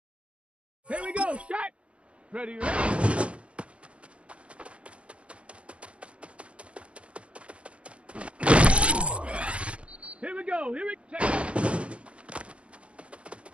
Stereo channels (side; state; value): left; late; 0.060 ms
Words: Here we go. Shot. Ready, ready. Here we go. Here we go.